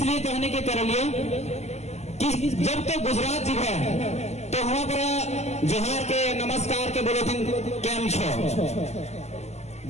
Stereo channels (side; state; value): right; late; 0.32 ms